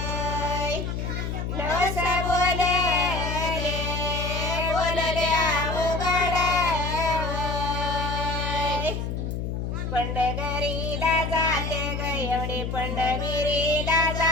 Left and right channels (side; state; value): left; noise; hum, 3 dB below the sound